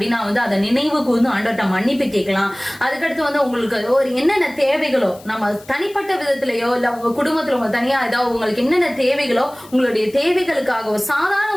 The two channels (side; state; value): left; noise; hiss, 23 dB below the sound